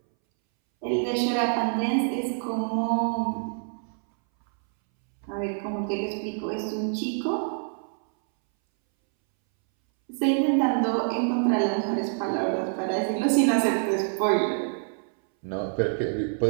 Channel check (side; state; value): left; silent; 61 dB below the other